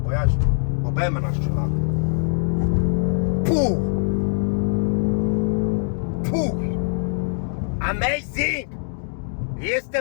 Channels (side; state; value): right; silent; digital silence